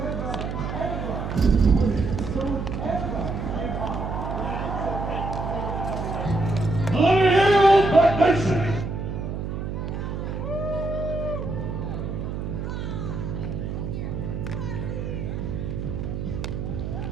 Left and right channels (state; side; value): noise; right; hum, 4 dB below the sound